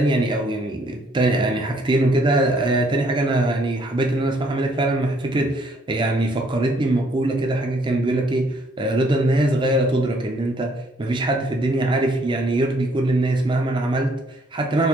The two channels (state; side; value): normal; both; correlation 0.66